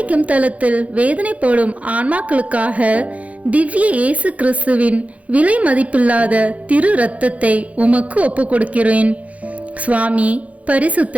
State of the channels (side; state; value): left; late; 0.067 ms